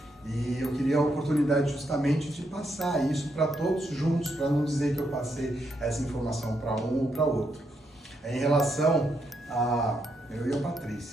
E eu queria a oportunidade justamente de passar isso para todos juntos, para não dizer que eu passei essa informação para um ou para outro. Em relação a eu e a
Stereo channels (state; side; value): normal; both; correlation 0.79